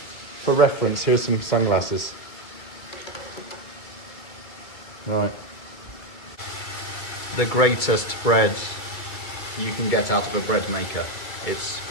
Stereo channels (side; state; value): right; late; 2.3 ms